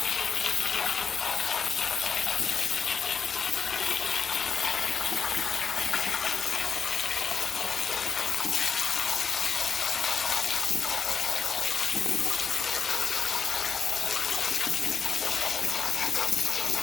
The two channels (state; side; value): quieter; right; 6.2 dB